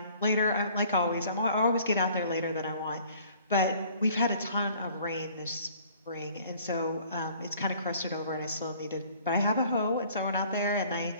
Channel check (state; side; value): inverted; both; correlation -0.55